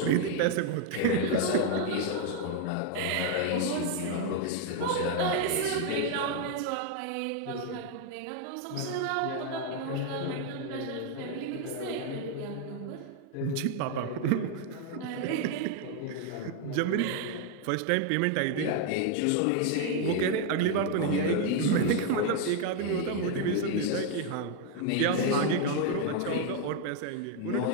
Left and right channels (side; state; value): both; different; correlation 0.01